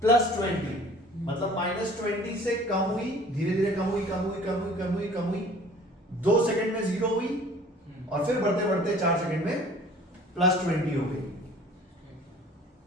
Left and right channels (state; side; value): normal; both; correlation 0.49